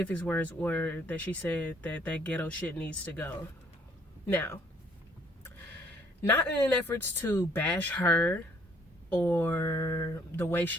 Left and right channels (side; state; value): both; normal; correlation 0.63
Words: words were that she said that ghetto shit needs to go. Now, not in an efforts to bash her or the way